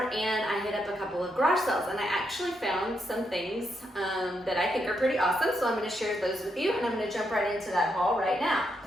and I hit up a couple of garage sales, and I actually found some things that I think are pretty awesome, so I'm going to share those with you, and I'm going to jump right into that haul right now.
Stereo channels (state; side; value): normal; both; correlation 0.80